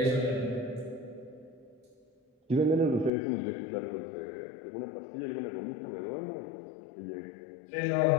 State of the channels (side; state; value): right; drops out; at 3.1 s